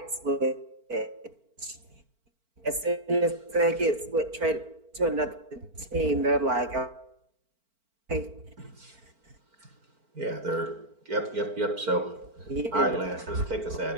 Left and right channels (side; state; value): left; late; 4.4 ms